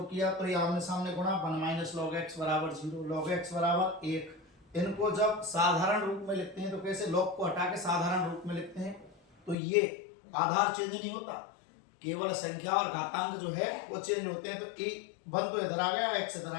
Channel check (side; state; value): right; drops out; at 9.6 s